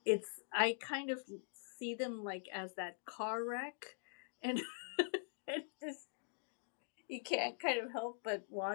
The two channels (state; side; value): silent; right; digital silence